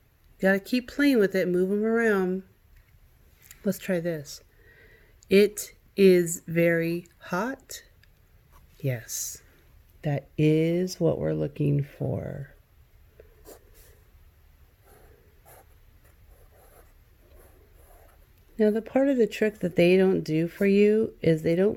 you got to keep playing with it, move them around. Let's try this. It is very hot. Yes, that is what we're looking for. Now, the part of the trick that they don't do for you is they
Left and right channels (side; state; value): both; identical; correlation 1.00